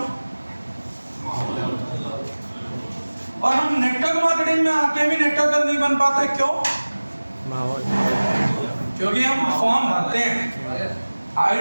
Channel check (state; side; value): inverted; both; correlation -1.00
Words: और हम नेटवर्क मार्केटिंग में आके भी नेटवर्कर नहीं बन पाते, क्यों? माहौल। क्योंकि हम फॉर्म भरते हैं,